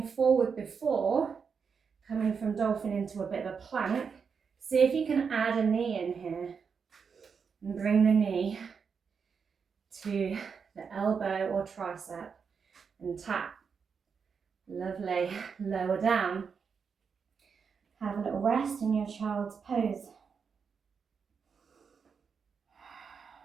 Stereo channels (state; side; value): quieter; left; 6.0 dB